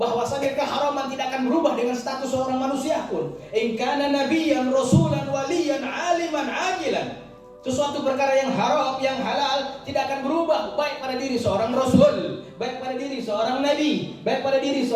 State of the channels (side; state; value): both; identical; correlation 1.00